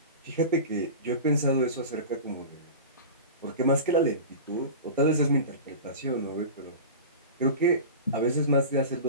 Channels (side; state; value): both; inverted; correlation -0.31